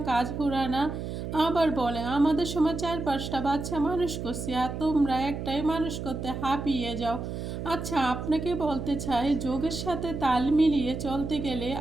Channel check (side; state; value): right; noise; hum, 6 dB below the sound